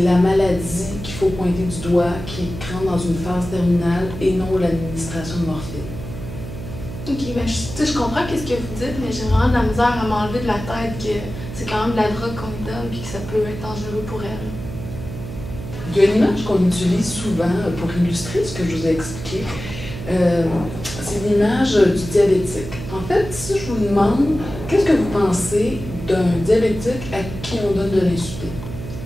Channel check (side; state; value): right; noise; hum, 10 dB below the sound